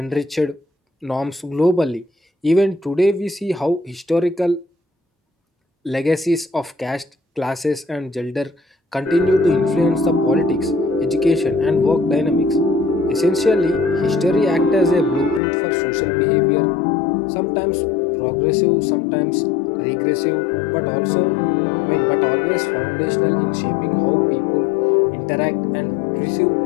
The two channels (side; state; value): right; drops out; at 15.4 s